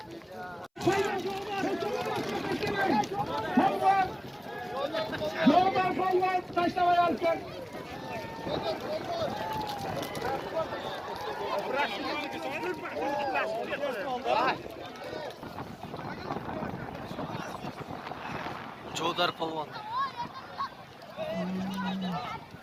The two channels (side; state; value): both; identical; correlation 1.00